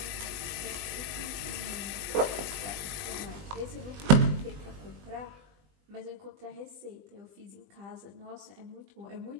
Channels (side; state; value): left; late; 20 ms